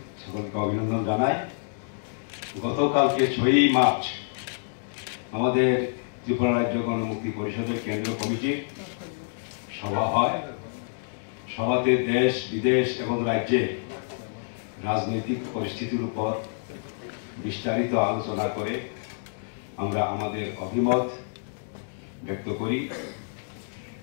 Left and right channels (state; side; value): silent; right; digital silence